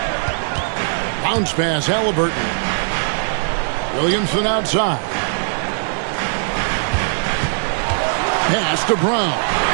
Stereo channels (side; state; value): left; silent; 63 dB below the other